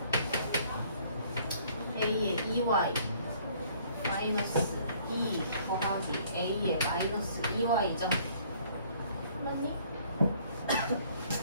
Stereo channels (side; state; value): both; inverted; correlation -0.59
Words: a의 2y 마이너스 2 더하기 a의 마이너스 2y죠? 맞니?